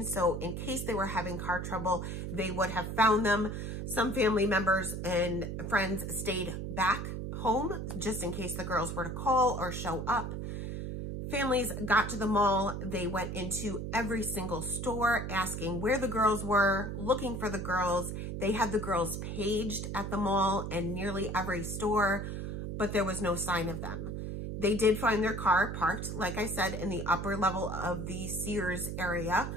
so in case they were having car trouble, they would have found them. Some family members and friends stayed back home just in case the girls were to call or show up. Families got to the mall. They went into every single store asking where the girls were, looking for the girls. They had the girls paged at the mall and nearly every store, but there was no sign of them. They did find their car parked, like I said, in the upper level of the Sears area.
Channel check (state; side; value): noise; right; hum, 5 dB below the sound